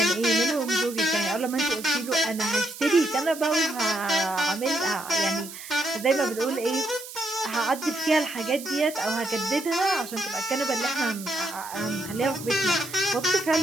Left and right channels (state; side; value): noise; right; hiss, 13 dB below the sound